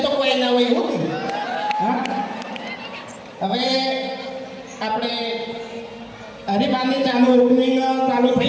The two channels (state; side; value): identical; both; correlation 1.00